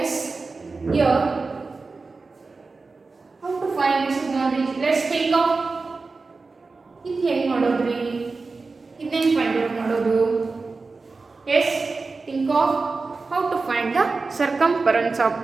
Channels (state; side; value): quieter; left; 4.0 dB